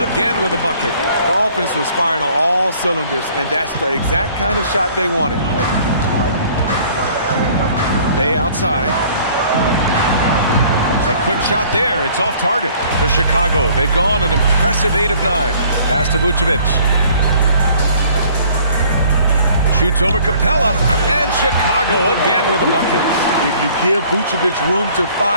again with a bucket. The offense was firing on all cylinders, and that's the exact kind of shot they wanted. Bay outside. A quick shot there. It's off target for Chicago. They've gone an impressive 8 of 9. Pass to Vucevic. Shoots over Capella, and Chicago again with a bucket. If you give Vucevic room to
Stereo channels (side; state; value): both; inverted; correlation -0.56